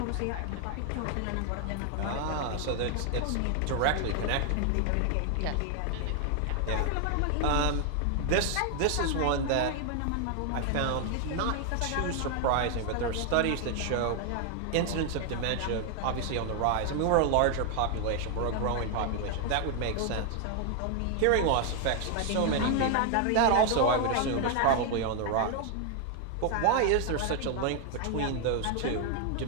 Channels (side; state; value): both; different; correlation 0.00